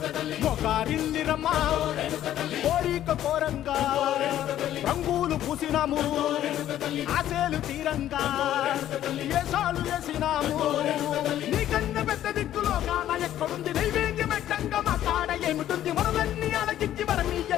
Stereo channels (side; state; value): right; quieter; 12.1 dB